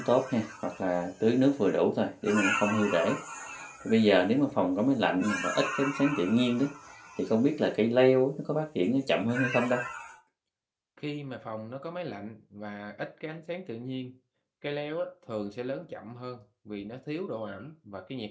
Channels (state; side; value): identical; both; correlation 1.00